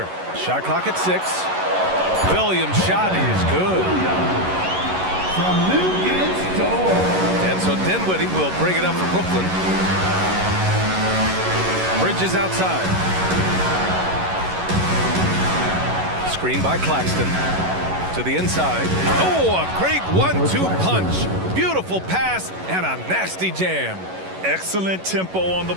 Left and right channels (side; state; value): left; late; 11 ms